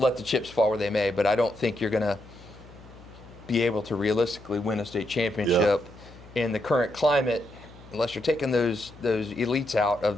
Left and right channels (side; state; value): left; noise; hum, 20 dB below the sound